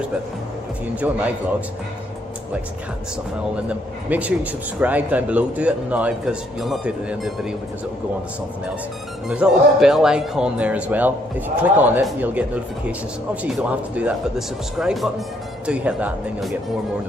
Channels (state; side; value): normal; both; correlation 0.70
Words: but if you enjoy my vlogs, like cat and stuff and all in them, make sure you subscribe down below. Do it now, because you'll not do it at the end of the video, because it will go on to something else. And there's a little bell icon there as well. If you click on it, you'll get notifications. Obviously you don't have to do that, but the subscribe button, do hit that, and then you'll get more and more